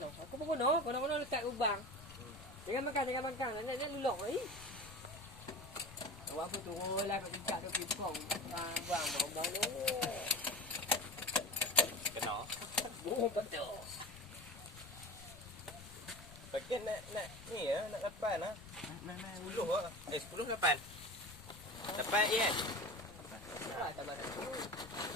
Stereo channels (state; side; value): noise; left; rumble, 17 dB below the sound